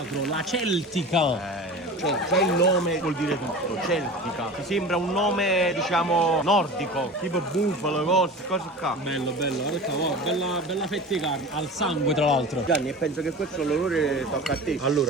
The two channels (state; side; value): normal; both; correlation 0.34